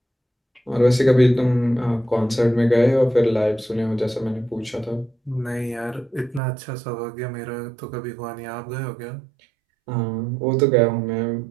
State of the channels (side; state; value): left; drops out; at 6.4 s